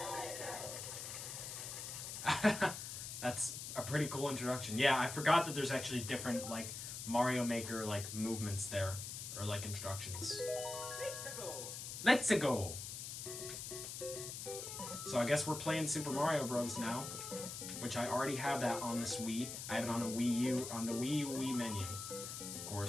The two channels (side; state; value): left; noise; hiss, 7 dB below the sound